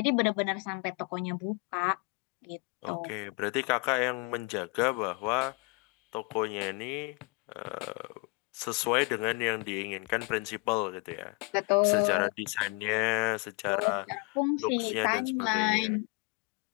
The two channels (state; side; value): quieter; right; 27.8 dB